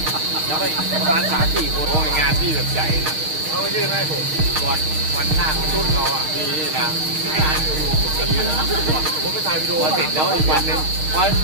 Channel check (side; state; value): left; late; 6.5 ms